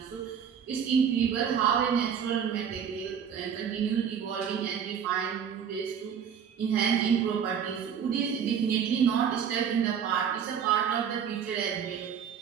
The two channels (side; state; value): left; quieter; 7.8 dB